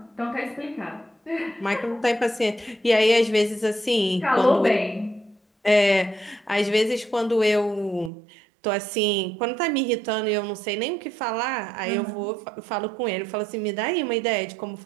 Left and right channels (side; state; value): left; drops out; at 8.1 s